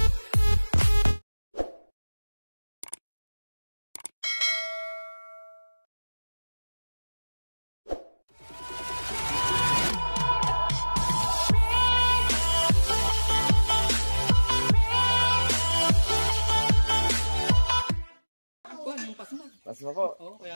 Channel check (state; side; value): inverted; both; correlation -1.00